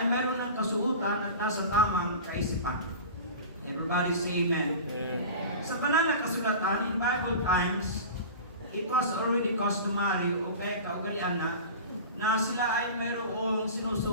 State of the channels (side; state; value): both; inverted; correlation -0.34